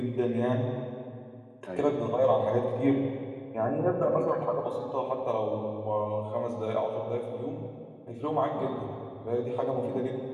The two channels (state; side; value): identical; both; correlation 1.00